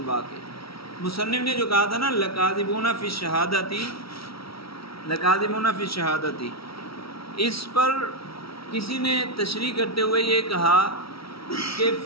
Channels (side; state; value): right; late; 0.75 ms